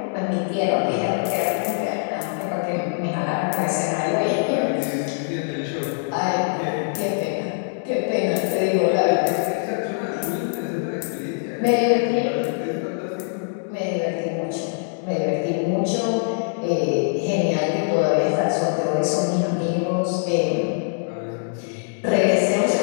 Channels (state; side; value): silent; right; digital silence